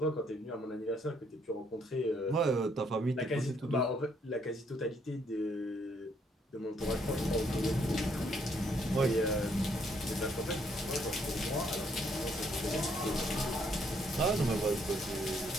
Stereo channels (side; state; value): both; normal; correlation 0.70